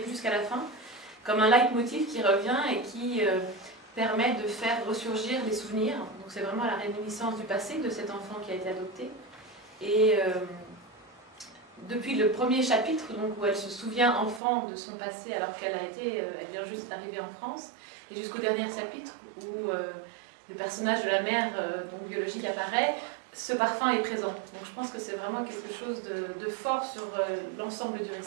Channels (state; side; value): drops out; left; at 14.4 s